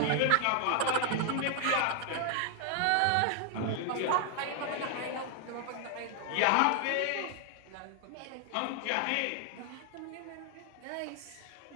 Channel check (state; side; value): different; both; correlation 0.00